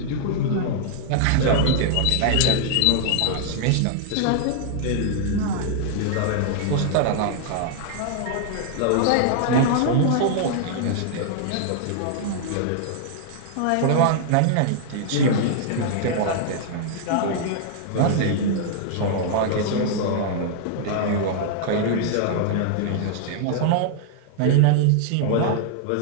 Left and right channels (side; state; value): both; different; correlation -0.01